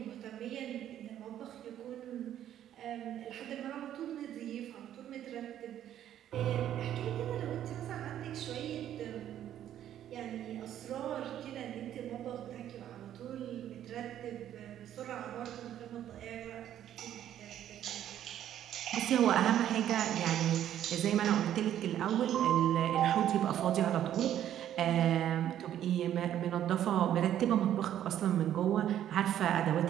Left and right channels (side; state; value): left; quieter; 11.1 dB